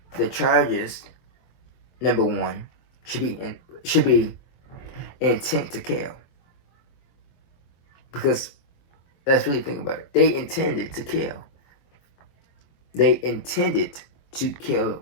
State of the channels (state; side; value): late; right; 23 ms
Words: the charges, number 1, should be intent to kill. Because let's really think about it. They intended to kill. They intended to kill